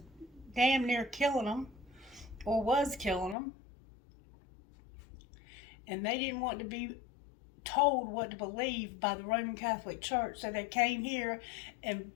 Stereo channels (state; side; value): drops out; right; at 3.4 s